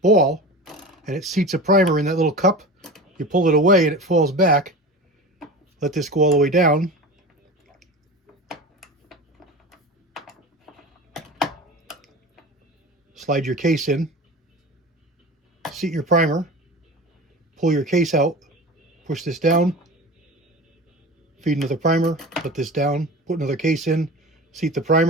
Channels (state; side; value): normal; both; correlation 0.32